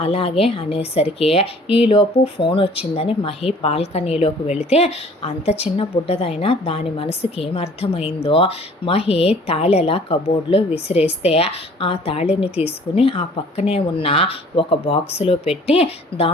అలాగే అనేసరికి ఈలోపు ఫోన్ వచ్చిందని మహి బాల్కనీలోకి వెళితే అంత చిన్న బుడ్డదైనా దాని మనసుకి ఏమర్థమైందో మహి తాళెలా కబోర్డ్లో విసిరేస్తే ఆ తాళిని తీసుకుని ఆ పక్కనే ఉన్న ఒక బాక్సులో పెట్టి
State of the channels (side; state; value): both; normal; correlation 0.52